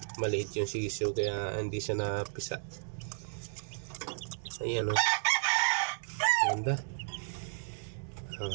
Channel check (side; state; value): left; silent; 56 dB below the other